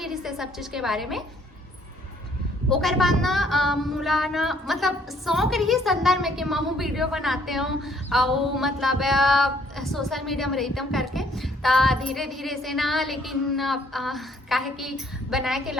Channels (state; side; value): normal; both; correlation 0.64